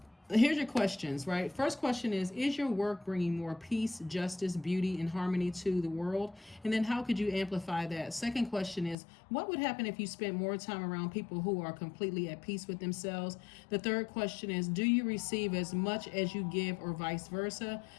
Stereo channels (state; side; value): drops out; right; at 9.0 s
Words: Here's your questions, right? First question is your work bringing more peace, justice, beauty, and harmony to the world? And then how could you amplify that? Second question is, what would happen if you spent more time around people who are completely at peace with themselves? The third question is, do you receive as much as you give or vice versa?